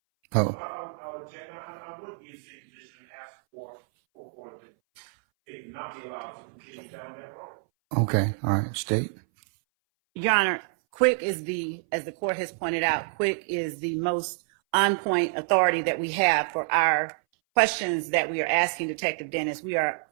Oh. I would object. I would be in the same position and ask for the state to not be allowed to continue down that road. Okay. All right. State. Your Honor, Quick is as the court has pointed out, Quick is the most on-point authority that we have for our questions that we are asking Detective Dennis. We are,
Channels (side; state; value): left; silent; 59 dB below the other